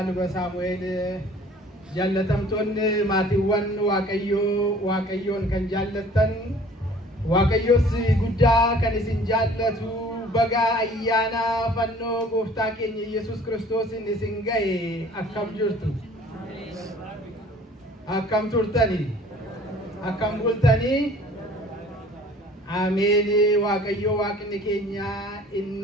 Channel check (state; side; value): normal; both; correlation 0.51